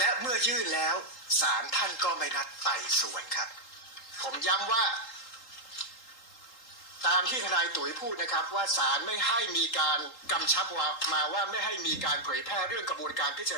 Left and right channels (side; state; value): right; late; 3.8 ms